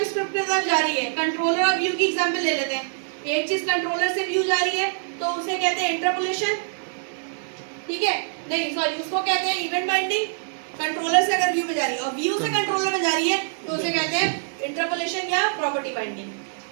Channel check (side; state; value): left; silent; 62 dB below the other